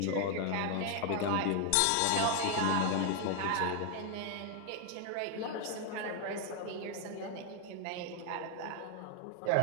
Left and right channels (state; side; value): different; both; correlation 0.00